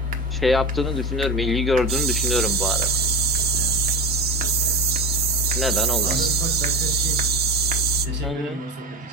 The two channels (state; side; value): normal; both; correlation 0.24